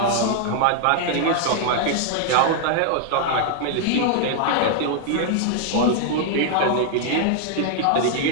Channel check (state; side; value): different; both; correlation 0.00